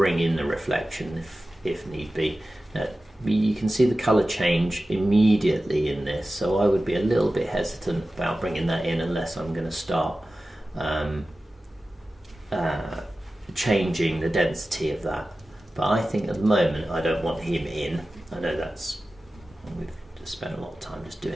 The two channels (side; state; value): both; normal; correlation 0.95